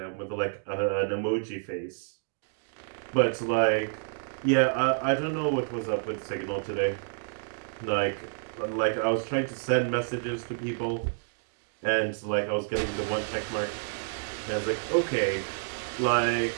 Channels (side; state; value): left; silent; digital silence